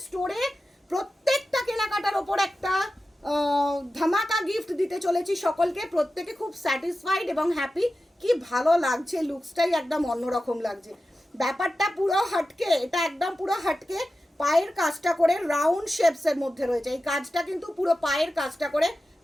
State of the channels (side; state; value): both; normal; correlation 0.93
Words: স্টোরে প্রত্যেকটা কেনাকাটার ওপর একটা ধামাকা গিফট দিতে চলেছি সকলকে। প্রত্যেকে খুব স্যাটিসফাইড এবং হ্যাপি। কি ভালো লাগছে, লুকসটাই একদম অন্যরকম লাগছে। ব্যাপারটা পুরো হাটকে, এটা একদম পুরো হাটকে, পায়ের কাজটা করে রাউন্ড শেপসের মধ্যে রয়েছে। এই কাজটা কিন্তু পুরো পায়ের কাজটা করে